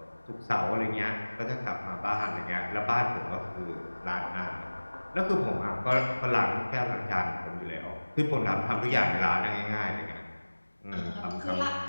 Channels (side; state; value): both; inverted; correlation -1.00